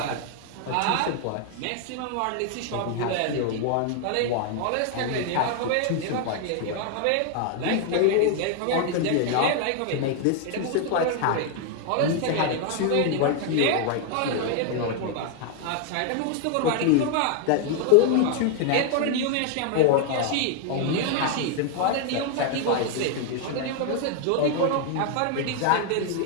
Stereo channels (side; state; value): both; different; correlation 0.00